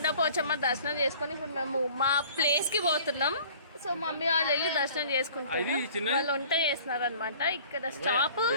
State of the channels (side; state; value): both; inverted; correlation -0.49